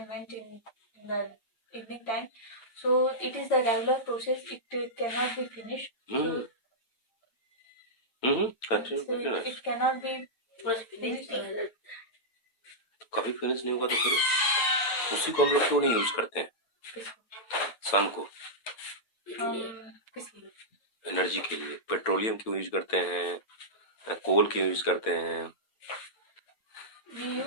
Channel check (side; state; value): right; late; 8.9 ms